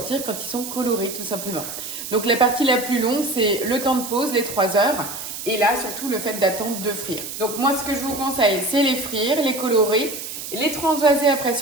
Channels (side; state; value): right; noise; hiss, 8 dB below the sound